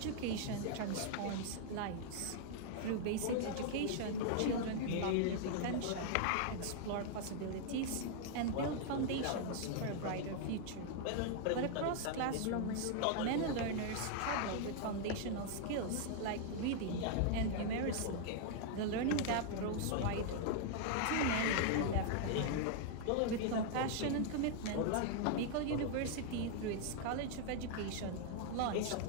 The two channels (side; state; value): both; different; correlation 0.00